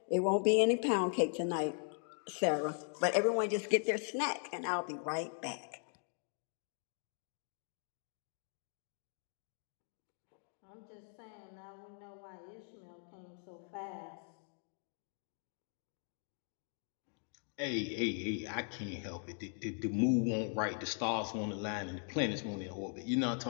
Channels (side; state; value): right; silent; 52 dB below the other